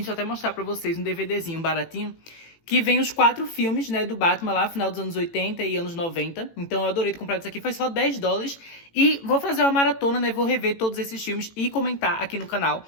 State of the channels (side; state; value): right; late; 18 ms